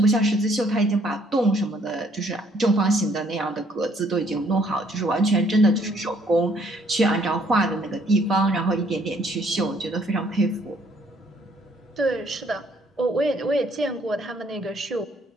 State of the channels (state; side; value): normal; both; correlation 0.65